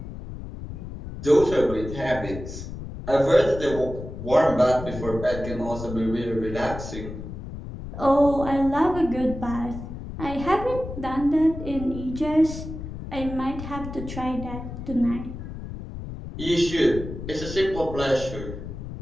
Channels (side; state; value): left; noise; rumble, 9 dB below the sound